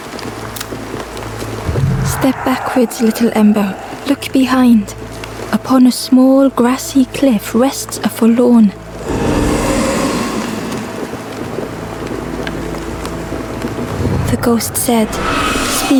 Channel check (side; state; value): both; identical; correlation 1.00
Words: Step backwards, little Ember. Look behind. Upon a small grassy cliff rests a forlorn. The ghost said,